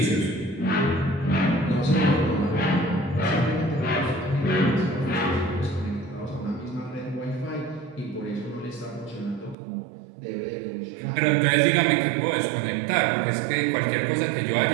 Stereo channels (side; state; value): left; drops out; at 9.6 s